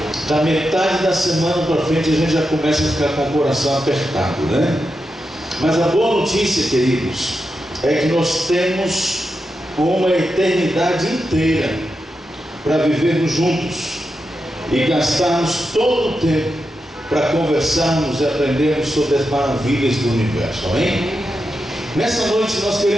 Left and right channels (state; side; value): normal; both; correlation 0.88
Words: Da metade da semana para frente a gente já começa a ficar com o coração apertado, né? Mas a boa notícia, queridos, é que nós temos uma eternidade inteira para vivermos juntos e gastarmos todo o tempo para conversarmos e aprendermos sobre as maravilhas do universo, amém? Nessa noite nós